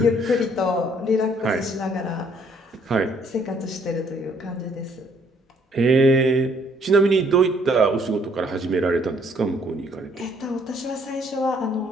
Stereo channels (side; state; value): both; normal; correlation 0.64